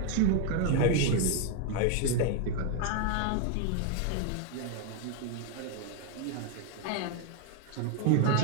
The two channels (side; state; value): both; different; correlation 0.01